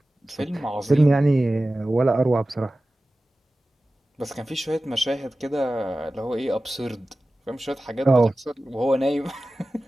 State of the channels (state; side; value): normal; both; correlation 0.96